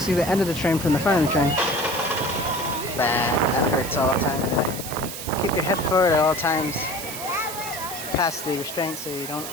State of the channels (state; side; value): noise; right; hiss, 8 dB below the sound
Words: see the end of the train from the front of the train. That hurts all the time. Keep your head forward at all times, past the restraint so you don't